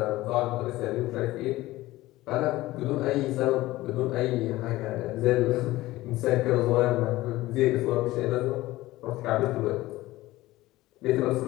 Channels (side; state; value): right; quieter; 17.7 dB